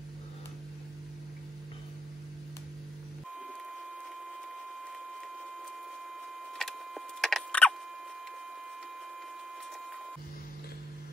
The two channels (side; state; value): both; normal; correlation 0.79